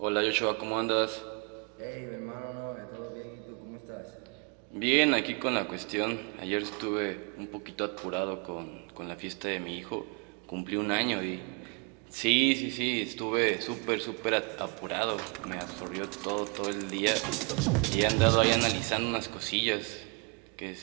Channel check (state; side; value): quieter; left; 33.8 dB